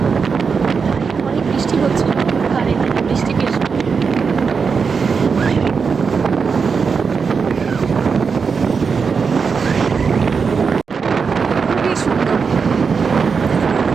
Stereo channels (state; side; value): quieter; left; 5.5 dB